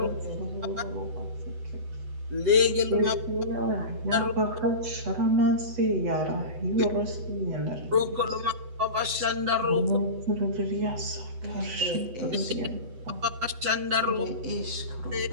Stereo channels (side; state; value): left; late; 8.0 ms